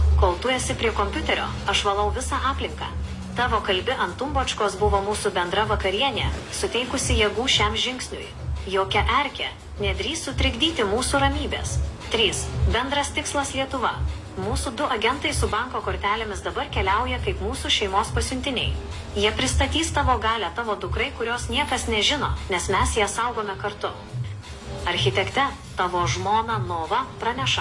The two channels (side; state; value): both; identical; correlation 1.00